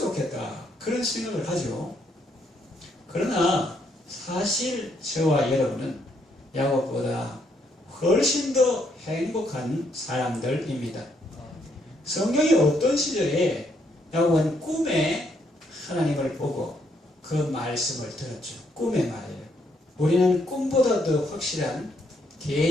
그런 생각을 하죠. 그러나 사실 저와 여러분은 야곱보다 훨씬 더 행복한 사람들입니다. 성경이 어떤 시절에 야곱은 꿈에 하나님을 보고 그 말씀을 들었죠. 꿈의 말이에요. 우리는 꿈보다 더 확실한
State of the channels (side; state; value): both; normal; correlation 0.73